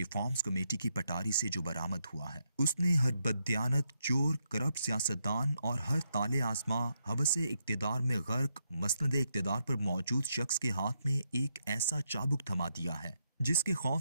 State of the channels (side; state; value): both; inverted; correlation -0.80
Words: कमेटी की पटारी से जो बरामद हुआ है, उसने हर बददियानत, चोर, करप्ट सियासतदान और हर ताले आजमा हवसे इक्तदार में गर्क मसनदे इक्तदार पर मौजूद शख्स के हाथ में एक ऐसा चाबुक थमा दिया है जिसके